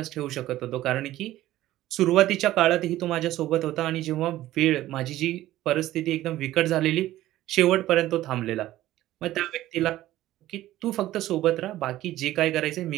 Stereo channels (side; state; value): left; quieter; 14.9 dB